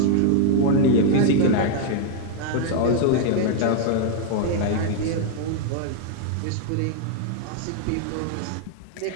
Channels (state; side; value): different; both; correlation 0.00